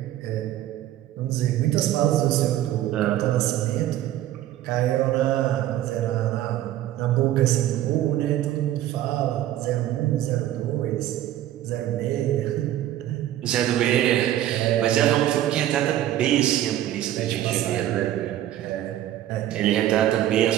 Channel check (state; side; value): quieter; left; 13.0 dB